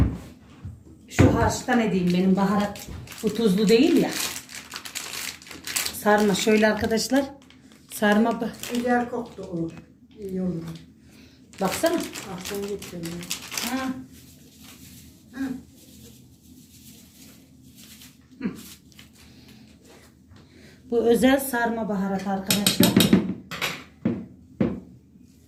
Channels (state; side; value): identical; both; correlation 1.00